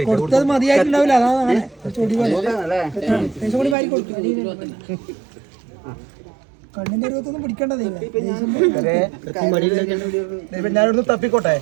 കൊടുത്തത് മതിയായിട്ടുണ്ടാവില്ല അതാണ് ചൊടി കൂടി വാരി കൊടുക്കും കണ്ണിന്റെ രൂപത്തൊന്നും പിടിക്കേണ്ടതേ ഞാനൊന്ന് തപ്പിക്കോട്ടെ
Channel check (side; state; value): left; drops out; at 3.8 s